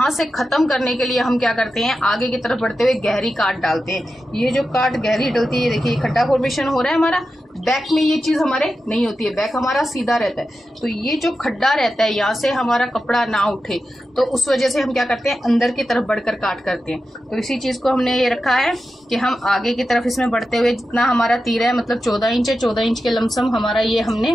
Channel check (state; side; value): normal; both; correlation 0.91